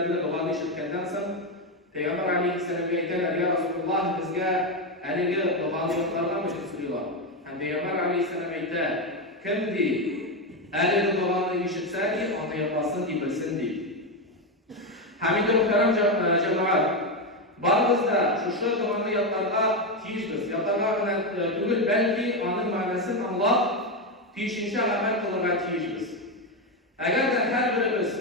duanı işitkenden sonra Peygamber Aleyhisselam beyler ya Resulullah bizge elini duanı yoklardan mı söylüyorlar? Hem Peygamber Aleyhisselam beyler kimdi? Elini duanı işitseydi onu yapmasın diye bilsin diye. Hamid-i muhterem cemaat, bazıda şu duanı yaplarga tiyişmiz. Yaplarga tügül belki onun manasını anlap, tiyişince amel kılırga tiyişmiz. Eğer de her birimiz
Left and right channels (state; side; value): normal; both; correlation 0.09